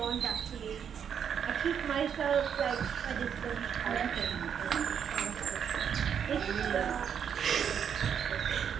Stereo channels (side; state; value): left; quieter; 8.0 dB